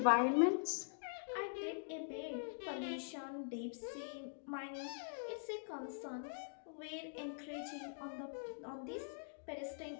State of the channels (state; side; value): silent; right; digital silence